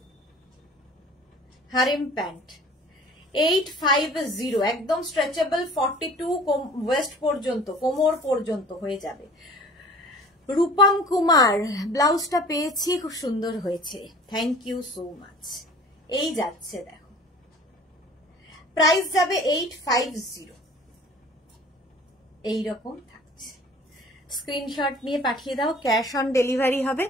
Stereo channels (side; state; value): both; normal; correlation 0.47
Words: হারেম প্যান্ট 850, একদম স্ট্রেচেবল, 42 ওয়েস্ট পর্যন্ত, কোমর পর্যন্ত হয়ে যাবে। রূপম কুমার, ব্লাউজটা পেয়েছি, খুব সুন্দর হয়েছে, থ্যাংক ইউ সো মাচ। এই যাচ্ছে দেখো, প্রাইস যাবে 850। এইরকম থাকছে। স্ক্রিনশট নিয়ে পাঠিয়ে দাও, ক্যাশ অন ডেলিভারি হবে